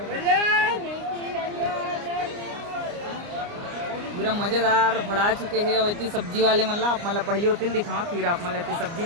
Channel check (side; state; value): left; late; 29 ms